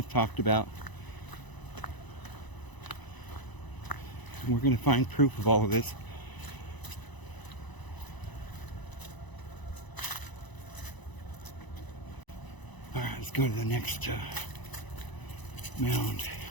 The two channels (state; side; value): late; right; 1.0 ms